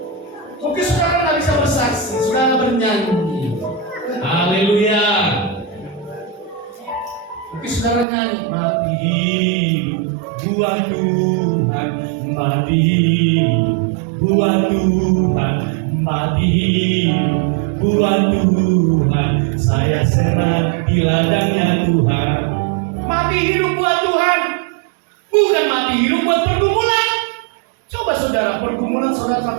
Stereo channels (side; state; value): left; drops out; at 8.1 s